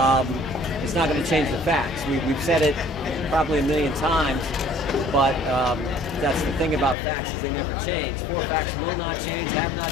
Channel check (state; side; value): drops out; right; at 7.0 s